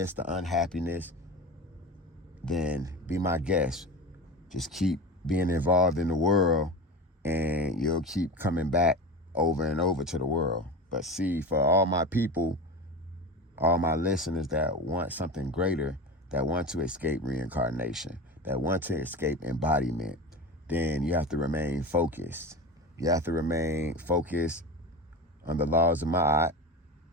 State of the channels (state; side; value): normal; both; correlation 0.27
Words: the unhappiness, then be my guest. Just keep being involved in the world, and you'll keep coming back over and over to the world. But see, for all my people, all my listeners that want something greater, that want to escape reincarnation, that want to escape embodiment, then you have to remain focused. You have to remain focused on the laws of Ma'at